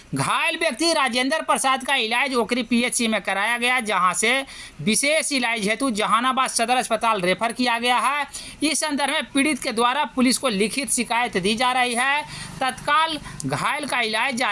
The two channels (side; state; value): both; identical; correlation 1.00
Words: घायल व्यक्ति राजेंद्र प्रसाद का इलाज ओकरी पीएचसी में कराया गया, जहां से विशेष इलाज हेतु जहानाबाद सदर अस्पताल रेफर किया गया है। इस संदर्भ में पीड़ित के द्वारा पुलिस को लिखित शिकायत दी जा रही है। तत्काल घायल का इलाज